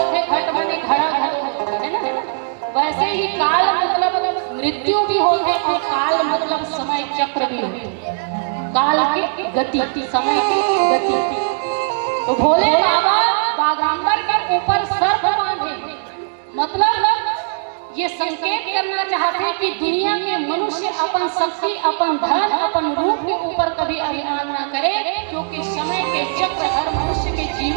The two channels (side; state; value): left; silent; digital silence